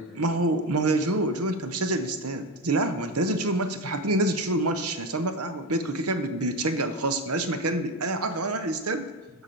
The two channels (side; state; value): both; normal; correlation 0.17